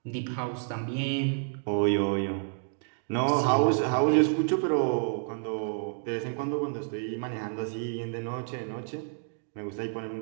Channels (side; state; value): left; silent; digital silence